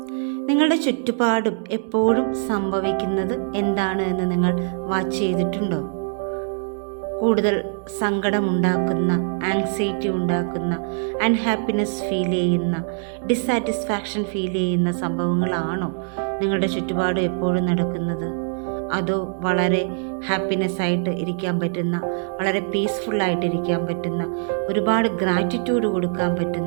നിങ്ങളുടെ ചുറ്റുപാടും എപ്പോഴും സംഭവിക്കുന്നത് എന്താണ് എന്ന് നിങ്ങൾ വാച്ച് ചെയ്തിട്ടുണ്ടോ? കൂടുതൽ സങ്കടമുണ്ടാക്കുന്ന, ആങ്സൈറ്റി ഉണ്ടാക്കുന്ന, അൺഹാപ്പിനെസ് ഫീൽ ചെയ്യുന്ന, ഡിസാറ്റിസ്ഫാക്ഷൻ ഫീൽ ചെയ്യുന്ന സംഭവങ്ങളാണോ നിങ്ങളുടെ ചുറ്റുപാടും എപ്പോഴും നടക്കുന്നത്? അതോ വളരെ ഹാപ്പിനെസ് ആയിട്ട് ഇരിക്കാൻ പറ്റുന്ന, വളരെ പീസ്ഫുള്ളായിട്ട് ഇരിക്കാൻ പറ്റുന്ന, ഒരുപാട് ഗ്രാറ്റിറ്റ്യൂഡ് കൊടുക്കാൻ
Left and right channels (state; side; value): silent; left; 64 dB below the other